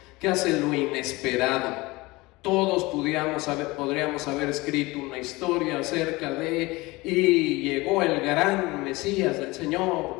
que hace lo inesperado. Todos podríamos haber escrito una historia acerca de: y llegó el gran Mesías del Señor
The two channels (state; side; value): quieter; right; 22.0 dB